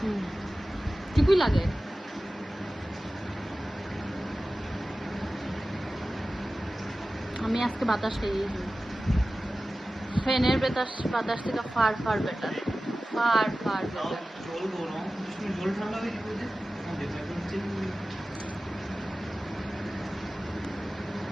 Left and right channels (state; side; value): normal; both; correlation 0.96